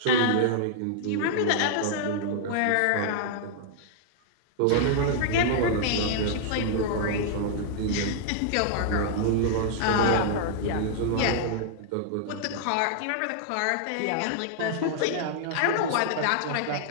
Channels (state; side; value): different; both; correlation -0.01